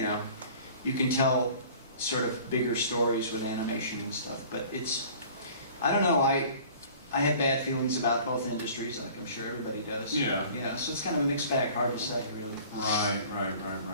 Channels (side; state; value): both; inverted; correlation -0.47